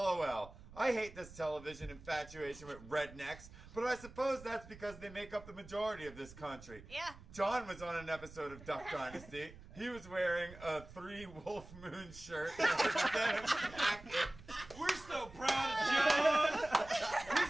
I hate this television infatuation with rednecks, but I suppose that's because they make up the majority of this country. Yeah. John was on an episode of Duck Dynasty. He was wearing a 3 Wolf Moon shirt and a denim jacket. We're so proud of John.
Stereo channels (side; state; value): right; noise; rumble, 18 dB below the sound